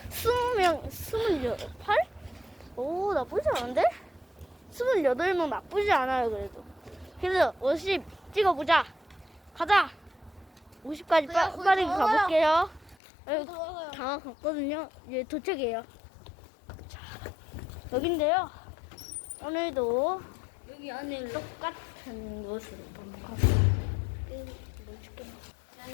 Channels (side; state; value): right; drops out; at 13.0 s